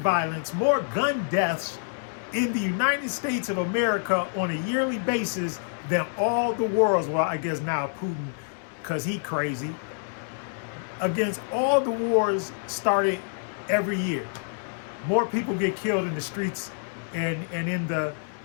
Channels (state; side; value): silent; right; digital silence